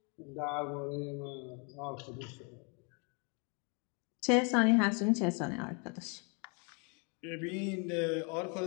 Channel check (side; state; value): right; quieter; 35.3 dB